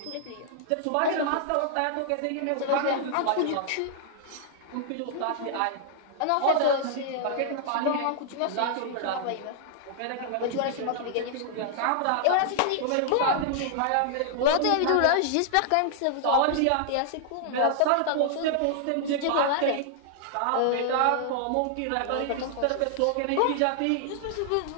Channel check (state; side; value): different; both; correlation -0.01